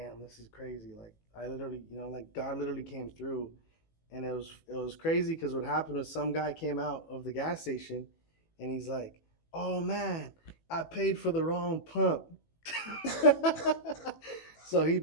this is crazy. Like I literally, like God literally came through. And it was crazy because what happened was some guy came out of the gas station, and he's like, oh man, I paid for the wrong pump. So he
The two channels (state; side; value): late; right; 18 ms